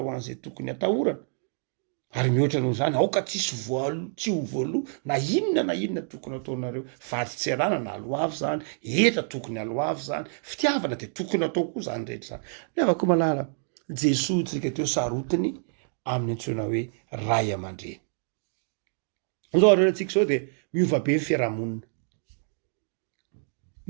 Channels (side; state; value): left; silent; digital silence